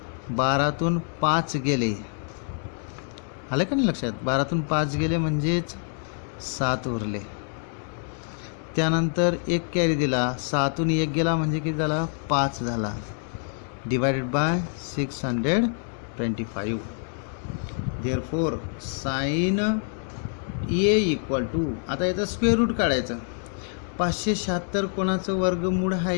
12तून 5 गेले, आलं का नाही लक्षात. 12तून 5 गेले म्हणजेच 7 उरले. त्यानंतर 1 कॅरी दिला, 6तून 1 गेला म्हणजे किती झाला 5 झाला. Divided by 625. Therefore sine A equal to, आता याचं स्क्वेअर रूट काढायचं. 576 कोणाचं वर्गमूळ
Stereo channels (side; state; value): right; silent; 56 dB below the other